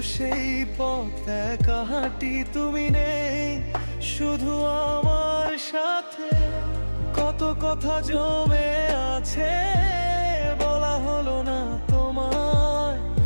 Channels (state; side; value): inverted; both; correlation -1.00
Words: সেই পথ একা হাঁটি, তুমি নেই শুধু আমার সাথে। কত কথা জমে আছে বলা হলো না তোমায়,